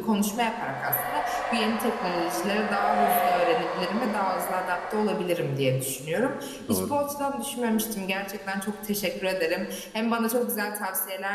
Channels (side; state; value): both; identical; correlation 1.00